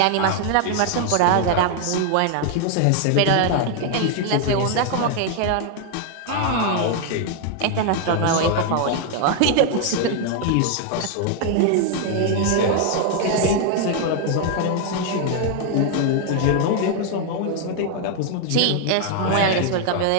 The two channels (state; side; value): different; both; correlation 0.00